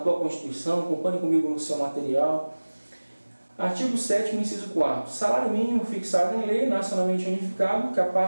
Constituição, acompanhe comigo no seu material. Artigo 7º, inciso 4º. Salário mínimo fixado em lei, nacionalmente unificado,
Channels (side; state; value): both; inverted; correlation -1.00